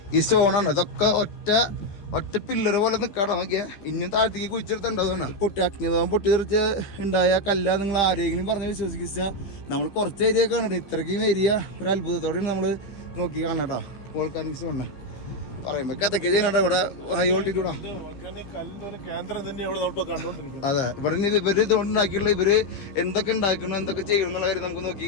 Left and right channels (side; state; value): right; late; 15 ms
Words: ഈ സ്റ്റോണാണ് ഇതൊക്കെ ഒറ്റ പില്ലറ് പോലെ നിൽക്കാട്ടോ. നോക്കിയാൽ ഇനിയും താഴത്തേക്ക് കുഴിച്ചെടുത്തുണ്ടാവുകയാണ്. അഗ്നിപർവ്വതം പൊട്ടിത്തെറിച്ച് ഉണ്ടായ കല്ല നിങ്ങൾ ആരെങ്കിലും പറഞ്ഞ് വിശ്വസിച്ചാൽ നമ്മൾ കുറച്ച് ഏരിയ കാണണം. ഇത്രയ്ക്കും ഏരിയ ഒരു അത്ഭുതത്തോടെയാണ് നമ്മൾ നോക്കി കാണണം കേട്ടോ. വോൾക്കാനിക്സ് കാണണം. പറയുമ്പോ കഥയ്ക്ക് ചെയ്യുന്നുണ്ട് ഇവിടെ ഹൈ വോൾട്ടിറ്റ്യൂഡാ. അതെ, ഇവിടെ ഇവര് ഇതുകൊണ്ടുണ്ടാക്കിയുള്ള ഇവര് എന്തൊക്കെ ഉണ്ടാക്കണം എന്തൊക്കെ ചെയ്യണം എന്നുള്ള കാര്യം നമുക്ക്